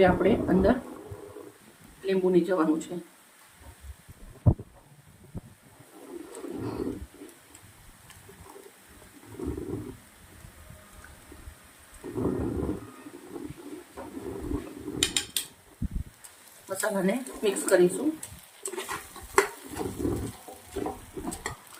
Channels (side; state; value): both; identical; correlation 1.00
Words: આપણે અંદર લીંબુ નીચવાનું છે. મસાલાને મિક્સ કરીશું.